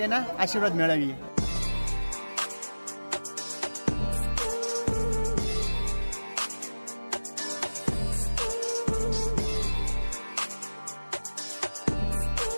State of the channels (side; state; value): both; inverted; correlation -1.00